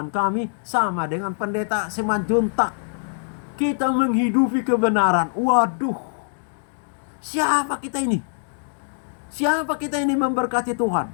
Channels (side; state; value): right; silent; digital silence